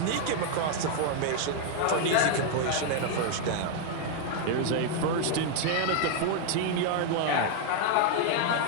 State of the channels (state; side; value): different; both; correlation 0.00